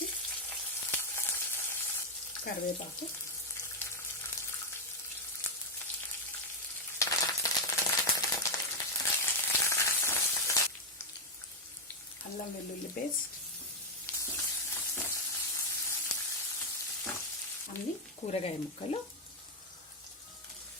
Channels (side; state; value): both; normal; correlation 0.03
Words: కరివేపాకు, అల్లం వెల్లుల్లి పేస్ట్, అన్ని కూరగాయ ముక్కలు,